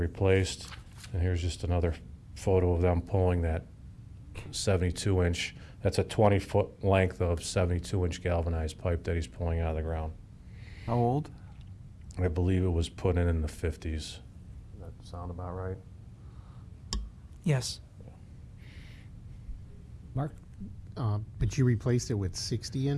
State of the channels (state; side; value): identical; both; correlation 1.00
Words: And here's just another photo of them pulling that 72-inch. That's a 20-foot length of 72-inch galvanized pipe that he's pulling out of the ground. How old? I believe it was put in the 50s. Does that sound about right? Yes. Mark? But you replaced it with